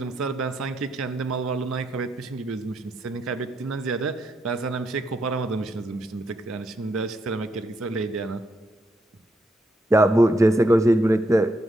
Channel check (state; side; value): normal; both; correlation 0.79